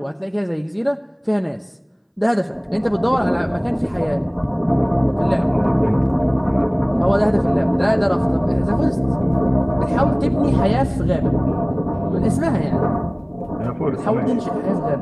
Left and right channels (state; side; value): identical; both; correlation 1.00